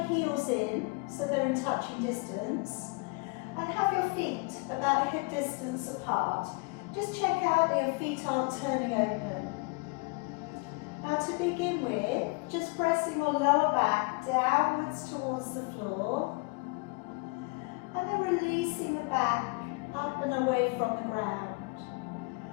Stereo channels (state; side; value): quieter; right; 29.1 dB